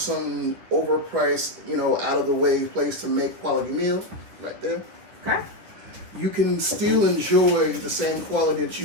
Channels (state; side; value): late; left; 10 ms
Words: overpriced, out of the way place to make quality meal right there. Okay. You can still enjoy the same quality that